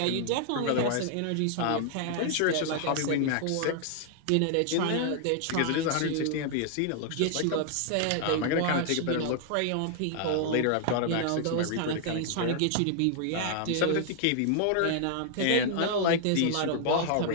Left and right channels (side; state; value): both; different; correlation 0.00